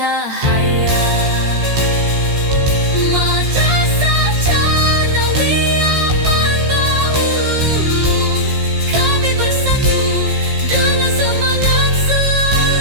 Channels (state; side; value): late; left; 15 ms